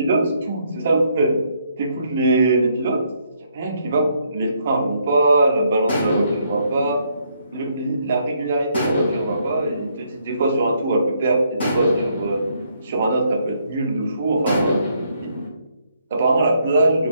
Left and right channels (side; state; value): both; inverted; correlation -0.72